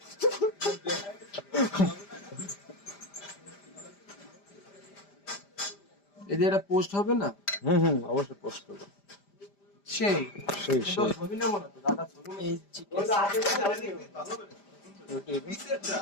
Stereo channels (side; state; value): right; late; 5.0 ms